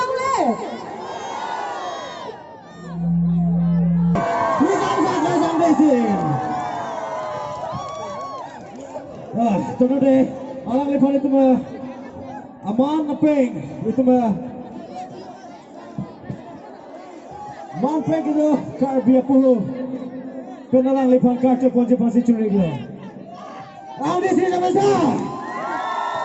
le. Tunggu deh, alang lepas itu mah aman ngepeng itu mah man peng itu karbia puluh penalang lepas kartu ponje pasti curi glo. Alang di sini sama saya.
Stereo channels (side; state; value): both; identical; correlation 1.00